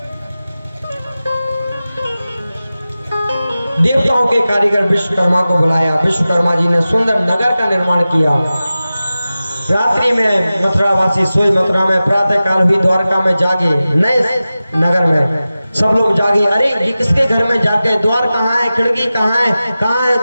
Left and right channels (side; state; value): both; inverted; correlation -0.95